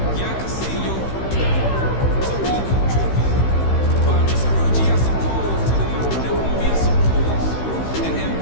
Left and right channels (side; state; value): right; late; 15 ms